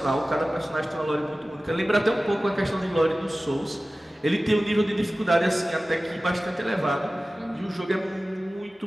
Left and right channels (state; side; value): normal; both; correlation 0.96